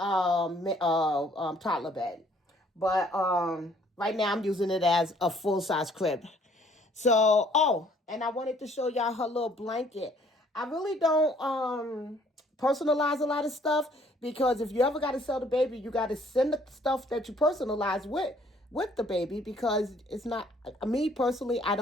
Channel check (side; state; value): both; normal; correlation 0.61